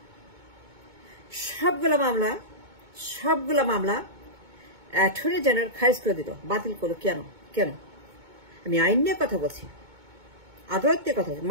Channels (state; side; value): late; left; 2.2 ms